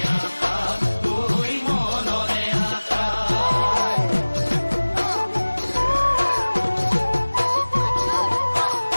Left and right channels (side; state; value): both; inverted; correlation -1.00